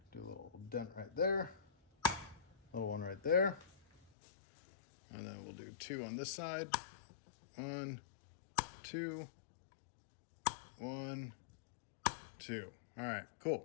do a little dent right there, little one right there, and then we'll do two on this side. 1, 2, 1, 2. All right,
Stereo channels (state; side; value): drops out; right; at 4.1 s